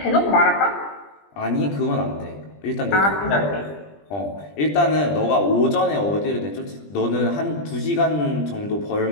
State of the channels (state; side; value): late; right; 20 ms